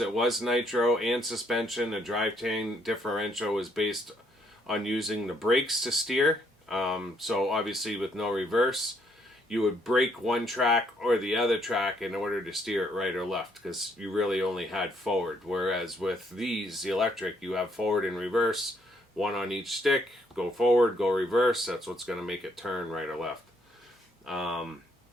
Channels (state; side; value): normal; both; correlation 0.70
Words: was nitro and suspension. The drivetrain differential was based on using the brakes to steer. So obviously with no reverse, you would brake one track or the other track in order to steer it right or left, because you really only had forward. Whereas with these, the electric, you have forward and reverse, one on each stick, go forward, go reverse. That's what's going to make it turn right or left.